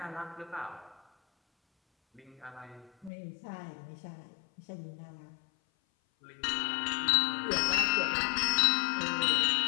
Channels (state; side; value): drops out; right; at 3.1 s